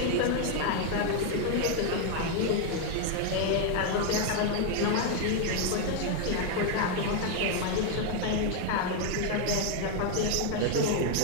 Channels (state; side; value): different; both; correlation 0.01